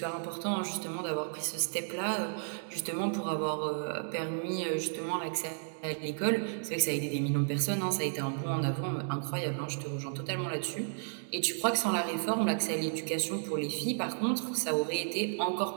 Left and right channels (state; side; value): silent; left; digital silence